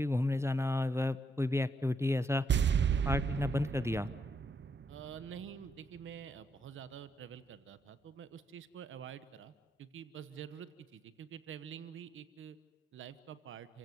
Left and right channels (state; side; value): normal; both; correlation 0.77